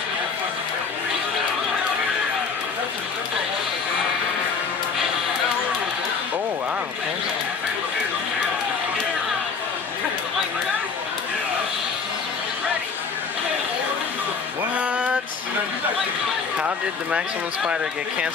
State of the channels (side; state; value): right; quieter; 5.4 dB